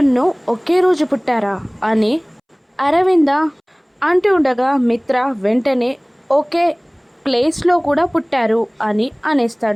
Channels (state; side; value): identical; both; correlation 1.00